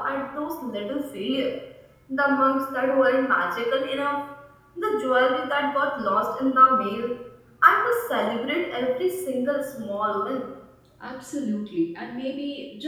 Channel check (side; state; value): both; identical; correlation 1.00